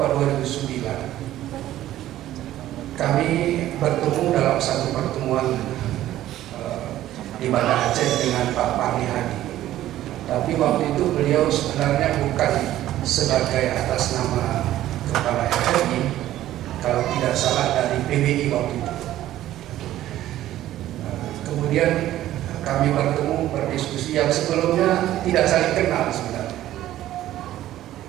2009, kami bertemu dalam satu pertemuan di Banda Aceh dengan Pak Parni Hadi. Tapi waktu itu beliau sebenarnya bukan sebagai atas nama Kepala RRI, kalau PBI waktu itu. Kemudian kami bertemu berdiskusi yang sebelumnya tidak saling kenal sebenarnya,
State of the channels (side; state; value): left; quieter; 13.7 dB